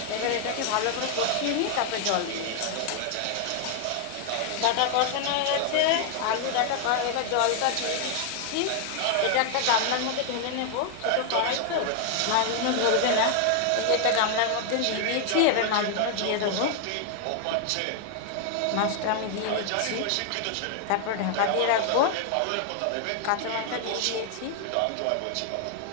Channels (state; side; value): different; both; correlation 0.00